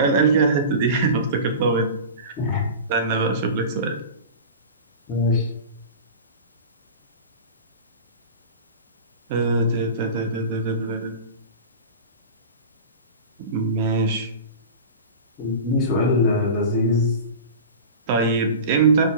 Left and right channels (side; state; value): both; inverted; correlation -0.32